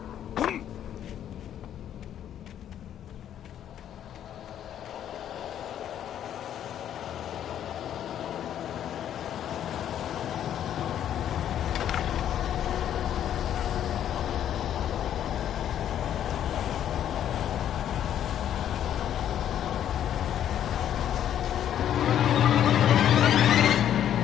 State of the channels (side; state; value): right; quieter; 10.4 dB